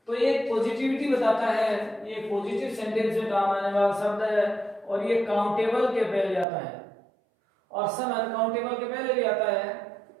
तो ये पॉजिटिविटी बताता है, ये पॉजिटिव सेंटेंस में काम आने वाला शब्द है, और ये काउंटेबल के पहले आता है, और सम अनकाउंटेबल के पहले भी आता है।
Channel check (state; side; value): drops out; left; at 6.5 s